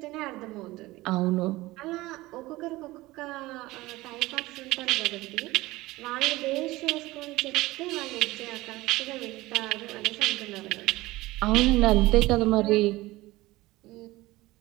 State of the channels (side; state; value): left; quieter; 19.2 dB